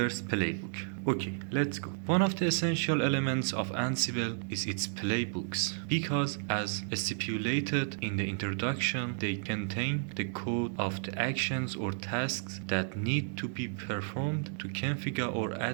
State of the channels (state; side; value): silent; left; digital silence